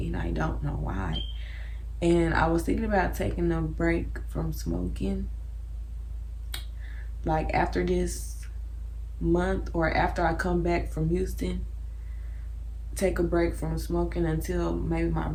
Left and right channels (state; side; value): identical; both; correlation 1.00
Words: and I don't know why. And I was thinking about taking a break from smoking, like after this month or after I come back from Houston, take a break from smoking until maybe my